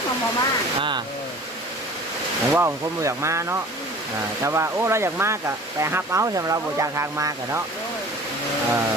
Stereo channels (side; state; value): both; normal; correlation 0.44